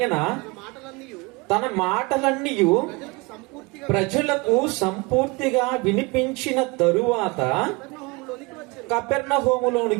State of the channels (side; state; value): left; quieter; 26.0 dB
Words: తన మాటలన్నీ ప్రజలకు సంపూర్తిగా వినిపించిన తరువాత